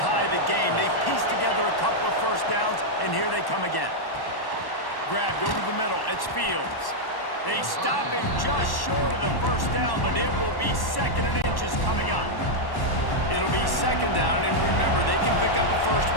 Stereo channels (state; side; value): late; right; 1.1 ms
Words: the game. They pieced together a couple of first downs, and here they come again. Grabbed over the middle, it's Fields. They stop him just short of the first down, but it will be 2nd and inches coming up. It'll be 2nd down, and remember, they can pick up a first